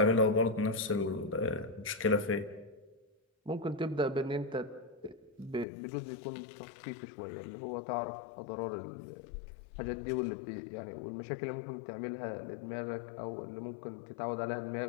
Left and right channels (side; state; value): right; drops out; at 5.7 s